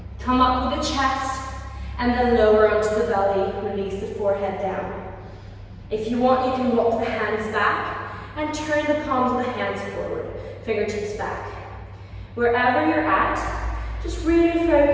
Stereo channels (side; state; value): both; identical; correlation 1.00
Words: Come up with the chest and then lower onto the belly. Release the forehead down. If you want, you can walk the hands back and turn the palms of the hands forward. Fingertips back. Wherever you're at, just really